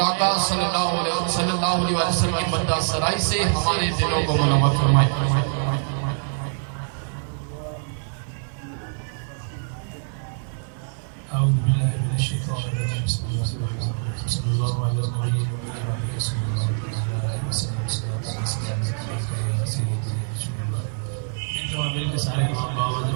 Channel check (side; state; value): left; silent; 62 dB below the other